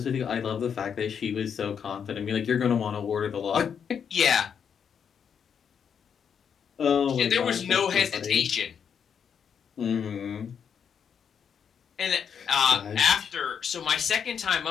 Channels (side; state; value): right; quieter; 7.4 dB